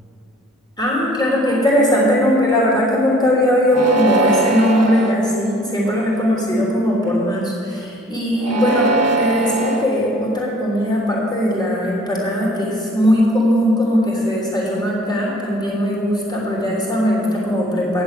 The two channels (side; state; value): both; normal; correlation 0.54